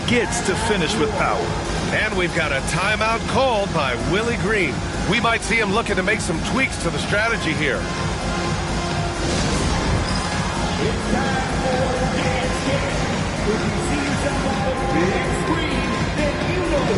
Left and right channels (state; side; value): identical; both; correlation 1.00